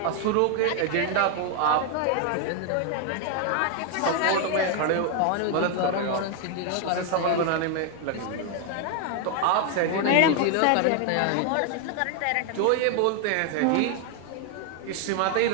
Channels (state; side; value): different; both; correlation 0.01